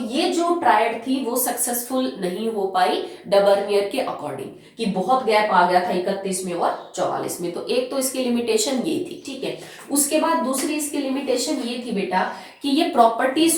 जो ट्रायड थी वो सक्सेसफुल नहीं हो पाई डबर्नियर के अकॉर्डिंग, कि बहुत गैप आ गया था 31 में और 44 में। तो एक तो इसकी लिमिटेशन ये थी, ठीक है। उसके बाद दूसरी इसकी लिमिटेशन ये थी बेटा कि ये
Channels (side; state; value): both; identical; correlation 1.00